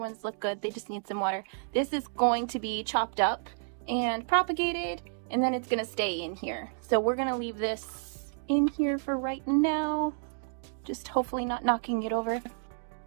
ones look good, they just need some water. This is going to be chopped up and propagated, and then it's gonna stay in here. So we're gonna leave this in here for right now. Just hopefully not knocking it over.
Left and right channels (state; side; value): silent; left; digital silence